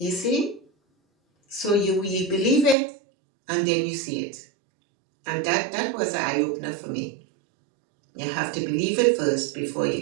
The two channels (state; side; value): drops out; left; at 2.8 s